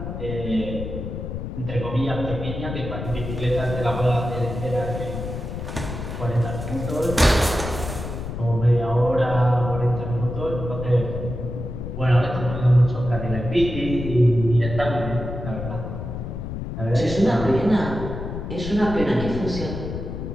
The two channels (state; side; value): noise; left; rumble, 6 dB below the sound